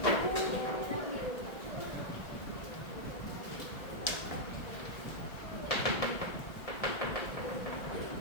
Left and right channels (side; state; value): right; late; 1.7 ms